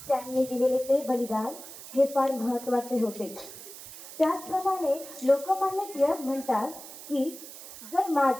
त्यांनी दिलेले ते बलिदान हे फार महत्त्वाचे होते. त्याचप्रमाणे लोकमान्य टिळक म्हणतात की जर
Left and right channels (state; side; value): noise; right; hiss, 14 dB below the sound